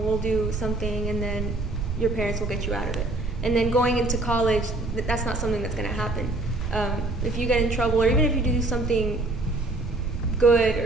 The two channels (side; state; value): right; noise; rumble, 4 dB below the sound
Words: we'll do something, and then your parents will get you out of it. And then going into college, that's not something that's going to happen. If you get in trouble, or even if you do something good